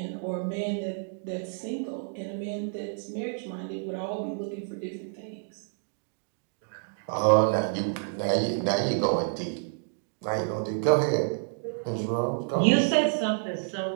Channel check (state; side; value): silent; left; digital silence